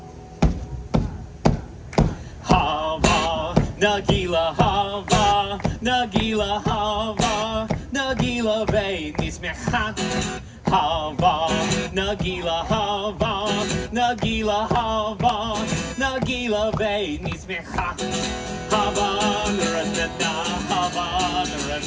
Hava, Nagila hava, Nagila hava, Nagila ve'nismecha. Hava, Nagila hava, Nagila hava, Nagila ve'nismecha. Hava, Naranana, hava,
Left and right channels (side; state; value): both; identical; correlation 1.00